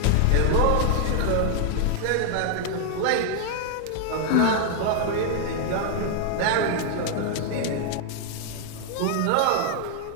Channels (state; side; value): different; both; correlation 0.00